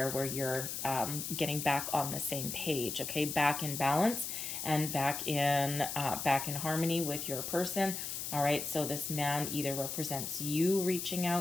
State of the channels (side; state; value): left; noise; hiss, 4 dB below the sound